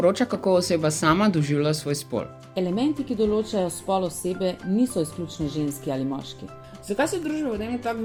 kako oseba sama doživlja svoj spol. elementi, ki določajo spol osebe, niso izključno ženski ali moški. Zakaj se družba v tem tako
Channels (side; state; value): both; identical; correlation 1.00